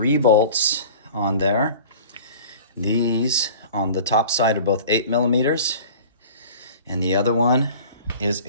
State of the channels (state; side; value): inverted; both; correlation -0.42